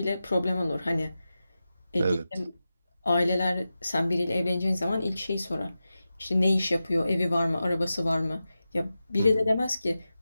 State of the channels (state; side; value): inverted; both; correlation -0.93